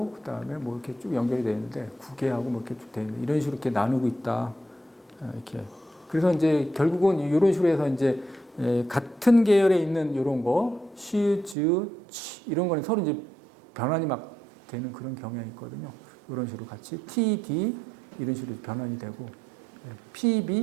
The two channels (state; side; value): drops out; left; at 11.6 s